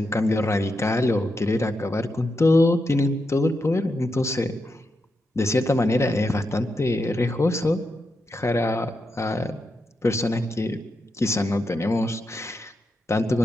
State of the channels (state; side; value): normal; both; correlation 0.85